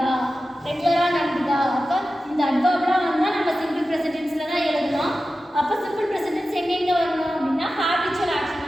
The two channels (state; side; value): normal; both; correlation 0.93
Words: ரெகுலராக நடந்ததா, அப்போ இந்த அட்வர்ப்லாம் வந்தால் நம்ம சிம்பிள் ப்ரெசன்ட் டென்ஸில் தான் எழுதணும். அப்போ சிம்பிள் ப்ரெசன்ட் டென்ஸ் எங்கெங்கே வரணும் அப்படின்னா ஹேபிச்சுவல் ஆக்ஷன்,